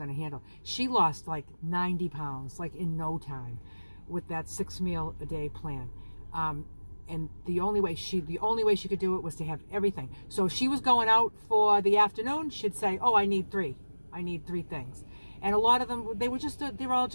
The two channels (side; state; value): both; inverted; correlation -1.00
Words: to handle. She lost 90 pounds, in no time, with that 6 meal a day plan. And the only way she could do it was to have everything. So if she was going out for the afternoon, she'd say, "Oh, I need 3 things." And a lot of them, they're all